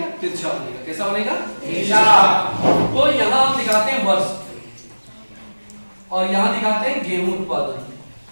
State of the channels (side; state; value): both; inverted; correlation -1.00